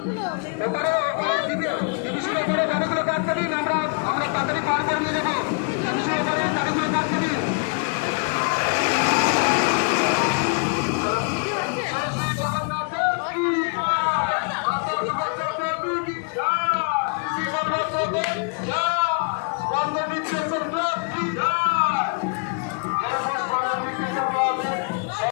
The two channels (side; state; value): right; quieter; 35.8 dB